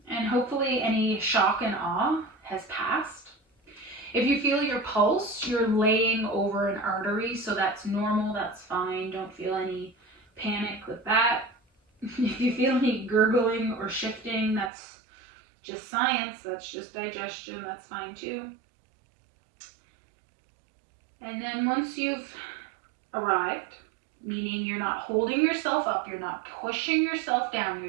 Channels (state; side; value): drops out; left; at 14.7 s